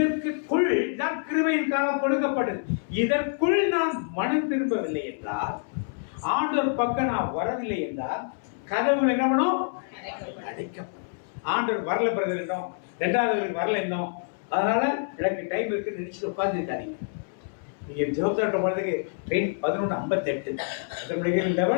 தான் கிருபையின் காலம் கொடுக்கப்பட்டது. இதற்குள் நான் மனம் திரும்பவில்லை என்றால், ஆண்டவர் பக்கம் நான் வரவில்லை என்றால், கதவுகள் என்ன பண்ணும்? அடைக்கப்படும். ஆண்டவர் வரல பிரதர் என்னோம், 2வது வரல என்னோம், அதனால எனக்கு டைம் இருக்குன்னு நினைச்சிட்டு உட்காந்துருக்காதீங்க. நீங்க ஜோப்தாட்ட போறதுக்கு ட்ரெயின் 11:58,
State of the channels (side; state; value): right; silent; 60 dB below the other